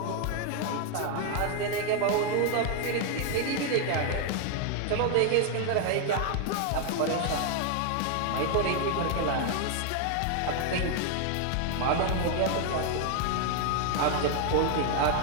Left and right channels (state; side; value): different; both; correlation 0.00